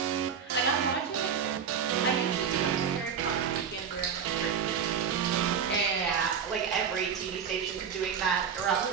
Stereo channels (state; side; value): quieter; left; 7.1 dB